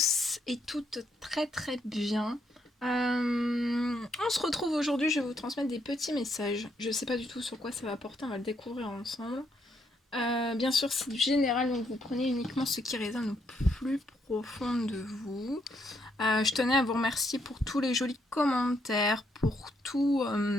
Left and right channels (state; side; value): normal; both; correlation 0.75